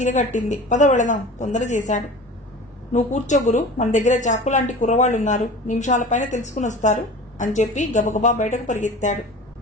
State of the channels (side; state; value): both; normal; correlation 0.37